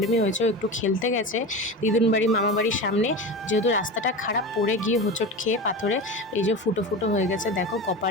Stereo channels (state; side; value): normal; both; correlation 0.27